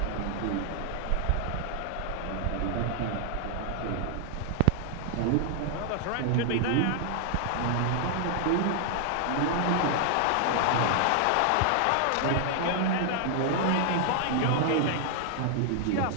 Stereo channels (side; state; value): both; different; correlation 0.00